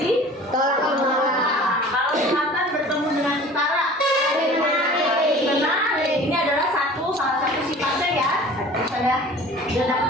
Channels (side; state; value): both; normal; correlation 0.44